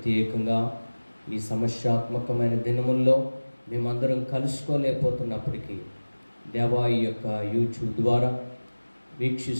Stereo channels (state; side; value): inverted; both; correlation -1.00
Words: ఈ సమస్యాత్మకమైన దినముల్లో మేమందరం కలుసుకోలేకపోతున్నప్పటికీ దేవా, ఈ యొక్క యూట్యూబ్ ద్వారా